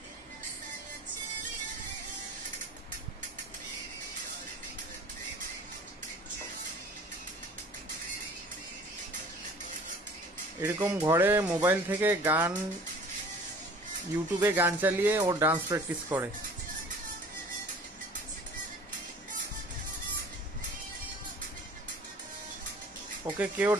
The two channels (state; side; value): normal; both; correlation 0.47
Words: এরকম ঘরে মোবাইল থেকে গান, ইউটিউবে গান চালিয়ে ও ডান্স প্র্যাকটিস করে। ওকে কেউ